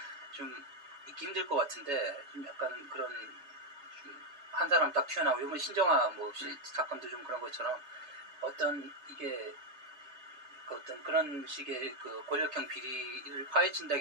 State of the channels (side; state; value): left; late; 3.3 ms